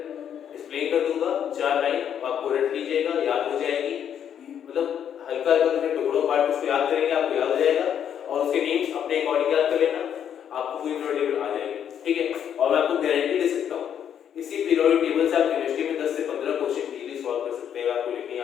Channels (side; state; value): right; quieter; 9.0 dB